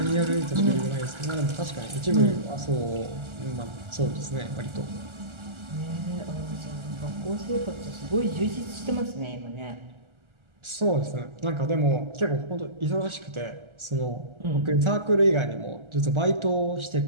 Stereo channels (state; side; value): late; left; 1.4 ms